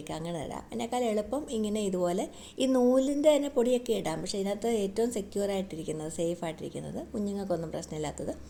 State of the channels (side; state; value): both; identical; correlation 1.00